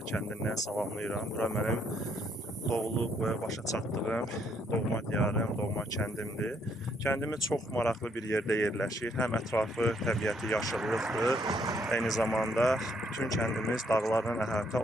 kəndindən salamlayıram. Bura mənim doğulub və başa çatdığım doğma diyarım, doğma kəndimdir. Kəndimiz çox maraqlı bir yerdə yerləşir. Həm ətrafı, təbiəti yaşıllıqdır. Eyni zamanda bütün kəndimiz dağlarla əhatə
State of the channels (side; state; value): both; normal; correlation 0.70